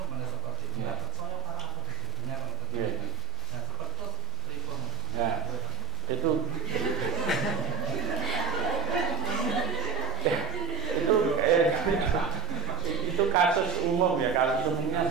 seperti itu? Nggak percaya para apa jadinya kalau terjadi. Nah seperti itu telefon. Itu kasus umum ya, kasus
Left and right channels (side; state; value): left; quieter; 4.7 dB